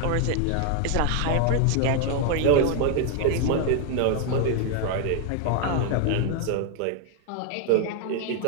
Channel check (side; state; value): both; different; correlation 0.00